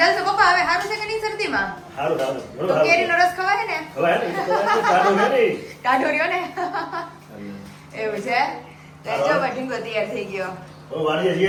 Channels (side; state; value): both; identical; correlation 1.00